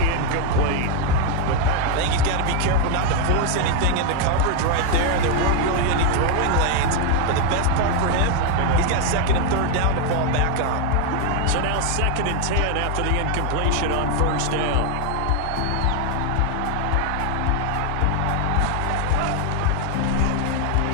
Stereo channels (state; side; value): different; both; correlation 0.01